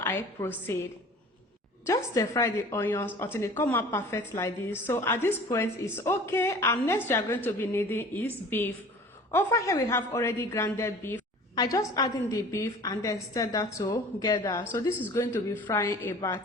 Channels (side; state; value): both; normal; correlation 0.44